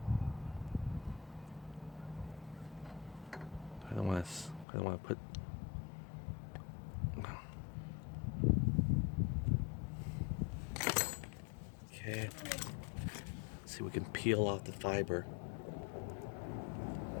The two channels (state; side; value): drops out; right; at 4.7 s